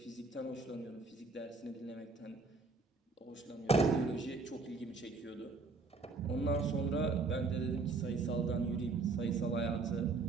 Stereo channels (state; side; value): quieter; left; 4.0 dB